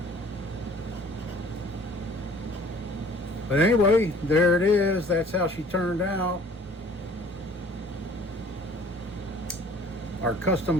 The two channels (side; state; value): both; normal; correlation 0.52